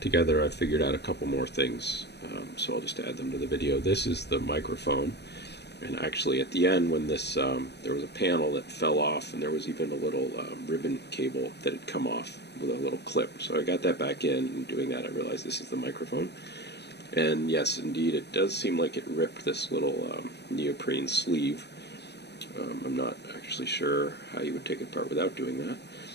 together, I've figured out a couple more things, so I'll just add them to the video. This is the microphone, and actually at the end when this, there was a panel that fell off, and there was even a little ribbon cable that had come off with a little clip. So I got that back in, and doing that I realized this is the microphone. And yes, indeed, it does seem like it ripped this little neoprene sleeve. I'm not actually sure how you would take it apart without doing that.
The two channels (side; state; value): right; late; 0.49 ms